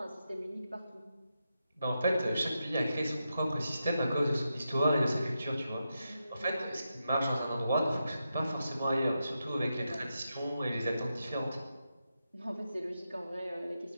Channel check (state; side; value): inverted; both; correlation -0.87